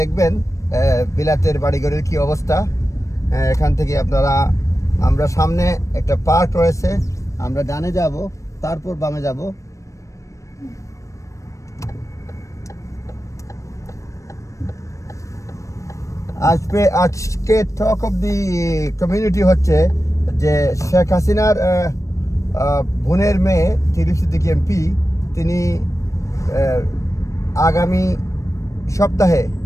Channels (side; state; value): right; late; 0.15 ms